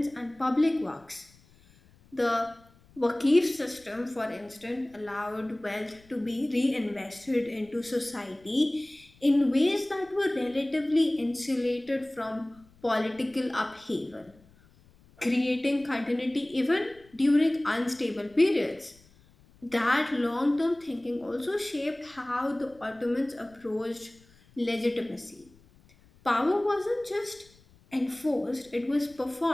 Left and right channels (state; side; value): noise; left; rumble, 28 dB below the sound